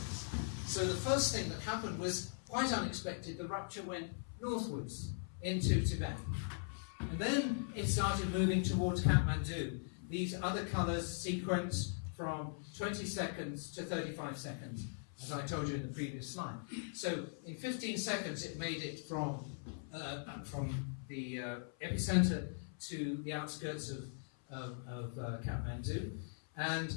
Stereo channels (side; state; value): right; silent; 51 dB below the other